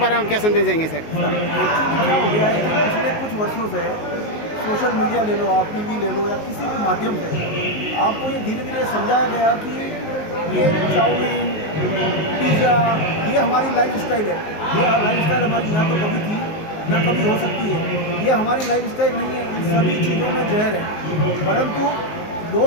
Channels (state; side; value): late; right; 19 ms